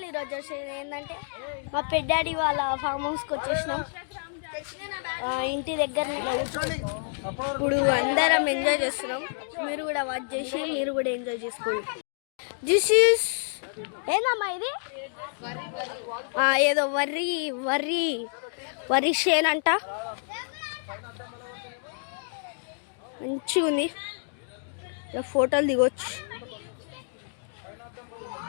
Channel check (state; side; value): silent; right; digital silence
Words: ఈరోజు వచ్చేది ఏంటంటే మా పెద్దాడి వాళ్ళ ఫామ్ హౌస్కి వచ్చేసినాం. ఇంటి దగ్గర ఇప్పుడు అందరం ఎంజాయ్ చేస్తున్నాం. మీరు కూడా వాచ్ చేసి మీరు కూడా ఎంజాయ్ చేసుకోండి. దిస్ ఈస్ ఏందమ్మా ఇది? ఏదో వర్రీ వర్రీ వరి షేన్ అంట. మంచిగా ఉంది, ఫోటోలు దిగొచ్చు.